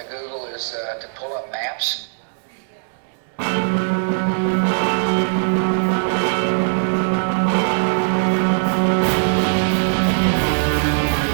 Google is to pull up maps.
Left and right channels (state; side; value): silent; left; 62 dB below the other